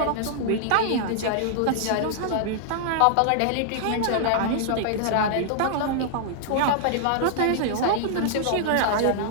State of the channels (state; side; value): different; both; correlation -0.01